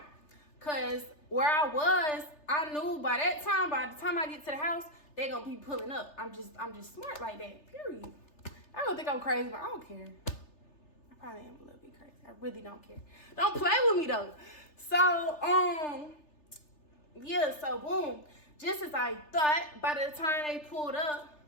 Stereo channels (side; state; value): right; late; 3.3 ms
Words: Because where I was, I knew by the time I get to the house, they gonna be pulling up. I'm just smart like that, period. I don't think I'm crazy, but I don't care. I probably am a little bit crazy. I really don't care. Don't play with me though. So, yeah, so boom. Just as I thought, by the time they pulled up,